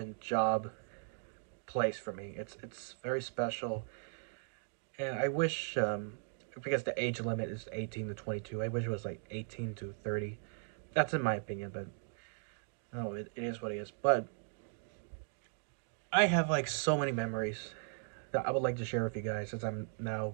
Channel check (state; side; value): silent; left; 53 dB below the other